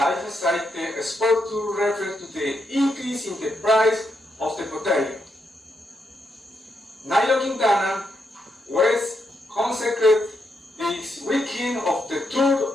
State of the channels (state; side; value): normal; both; correlation 0.81